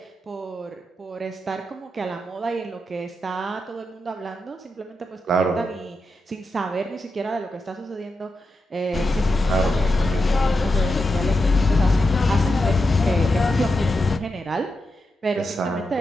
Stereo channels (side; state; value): both; normal; correlation 0.88